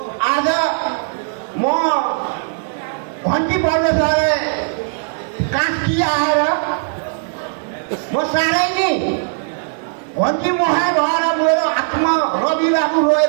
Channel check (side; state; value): left; silent; 59 dB below the other